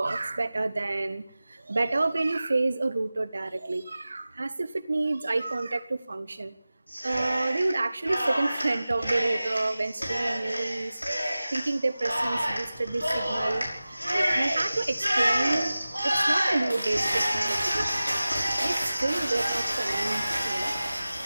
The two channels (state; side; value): inverted; both; correlation -0.96